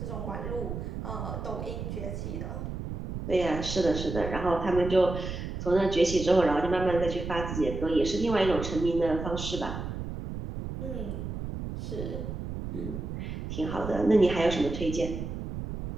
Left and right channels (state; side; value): noise; right; rumble, 6 dB below the sound